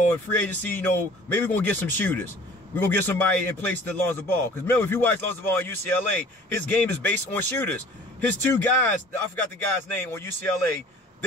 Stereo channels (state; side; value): normal; both; correlation 0.48